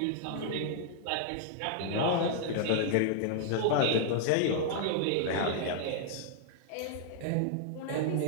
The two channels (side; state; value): both; different; correlation -0.01